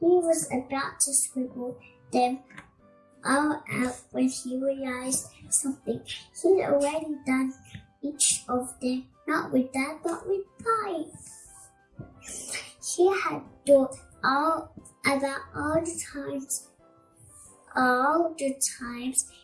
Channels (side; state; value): both; identical; correlation 1.00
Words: was about to scribble them all out when he realized something. He'd already done each of them, not with Dad, but with Bai. He had thought about all the times